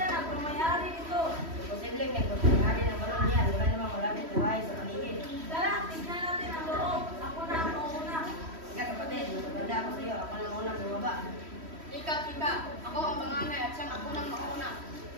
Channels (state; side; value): late; left; 3.1 ms